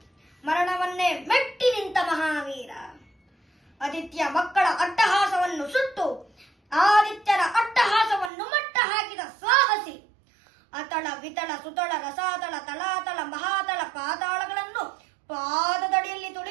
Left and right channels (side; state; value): left; drops out; at 8.3 s